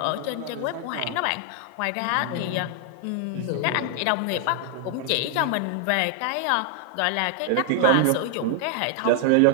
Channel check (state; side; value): different; both; correlation 0.00